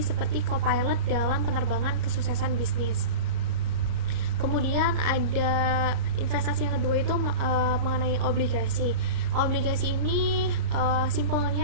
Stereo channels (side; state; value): left; late; 34 ms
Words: co-pilot dalam penerbangan kesuksesan bisnis. Kemudian ada investasi yang kedua itu mengenai obligasi. Obligasi ini